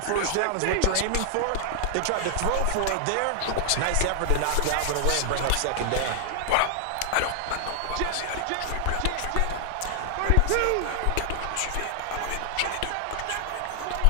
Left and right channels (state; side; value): different; both; correlation 0.00